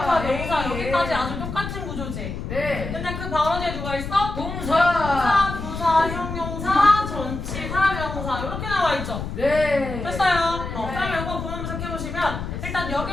명사 여기까지 아주 똑같은 구조지? 네. 근데 그 바로 뒤에 누가 있어? 동사. 부사, 형용사, 전치사, 명사 이렇게 나와 있죠? 네. 됐어요. 그러면 이거 보면 해보시면 일단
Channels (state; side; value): noise; left; rumble, 6 dB below the sound